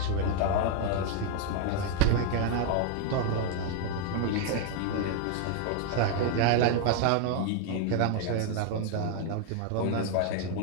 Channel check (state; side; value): different; both; correlation 0.01